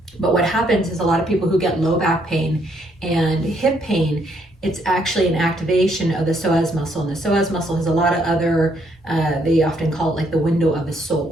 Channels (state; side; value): normal; both; correlation 0.71